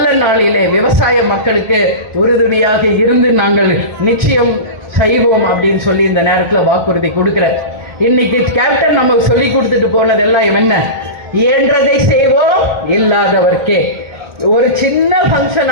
நாளிலே விவசாய மக்களுக்கு உறுதுணையாக இருந்து நாங்கள் நிச்சயம் செய்வோம் அப்படின்னு சொல்லி இந்த நேரத்தில் வாக்குறுதி கொடுக்கிறேன். இன்னைக்கு கேப்டன் நமக்கு சொல்லி கொடுத்துட்டு போனதெல்லாம் என்ன? இயன்றதை செய்வோம், இல்லாதவர்க்கே. ஒரு சின்ன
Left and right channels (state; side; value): late; left; 1.3 ms